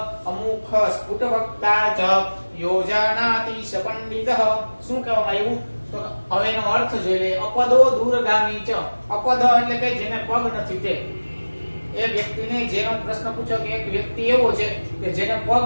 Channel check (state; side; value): inverted; both; correlation -1.00